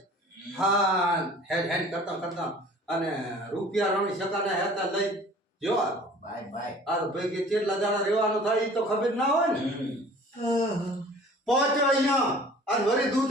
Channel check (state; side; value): normal; both; correlation 0.48